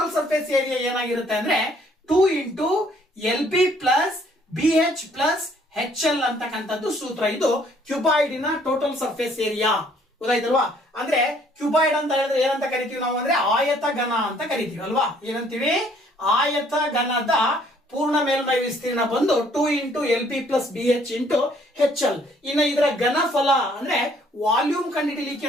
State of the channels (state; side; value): normal; both; correlation 0.62